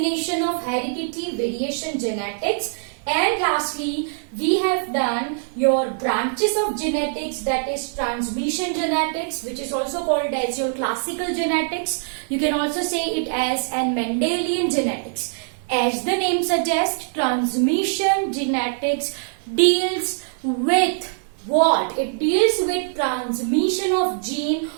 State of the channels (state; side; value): silent; left; 56 dB below the other